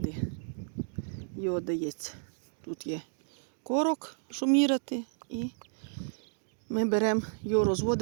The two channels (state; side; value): silent; left; digital silence